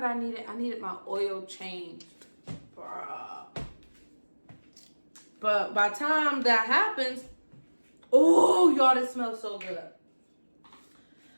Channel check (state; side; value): inverted; both; correlation -1.00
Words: I needed? I needed my oil changed. Bruh. But by the time that happens, oh, y'all, this smells so good.